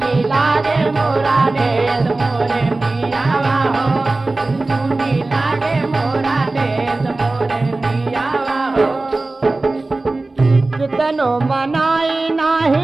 लागे मोरा देश मोरे पियावा हो सुनी सुनी लागे मोरा देश मोरे पियावा हो कितनो मनाई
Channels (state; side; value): quieter; left; 3.2 dB